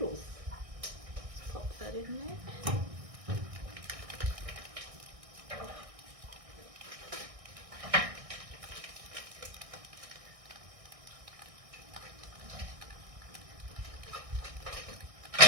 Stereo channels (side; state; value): left; late; 1.6 ms